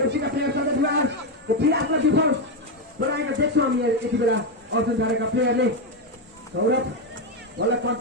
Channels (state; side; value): normal; both; correlation 0.08